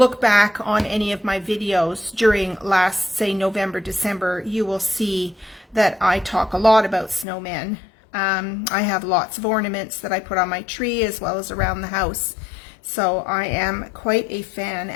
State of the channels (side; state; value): right; drops out; at 7.2 s